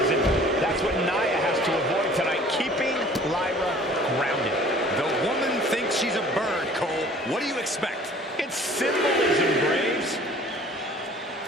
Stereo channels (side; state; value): both; normal; correlation 0.50